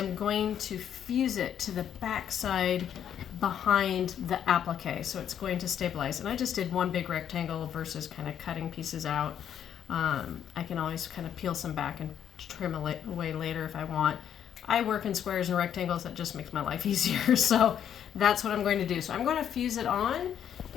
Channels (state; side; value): quieter; right; 9.3 dB